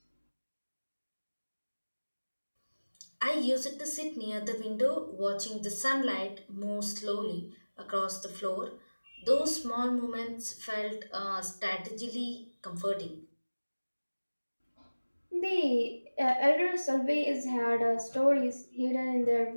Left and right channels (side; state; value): both; inverted; correlation -1.00